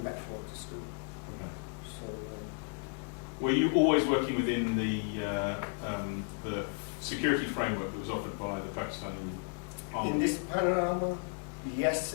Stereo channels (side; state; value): right; silent; 55 dB below the other